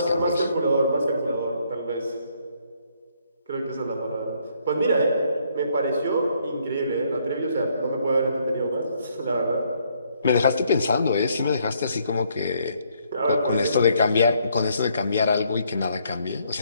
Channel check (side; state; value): both; inverted; correlation -0.69